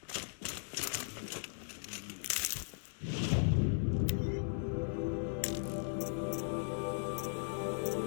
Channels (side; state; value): right; silent; digital silence